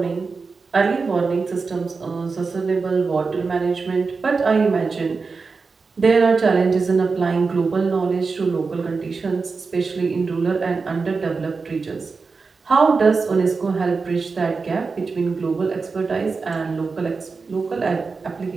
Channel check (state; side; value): quieter; left; 4.5 dB